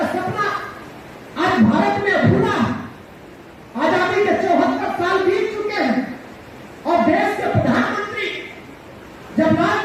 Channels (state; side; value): identical; both; correlation 1.00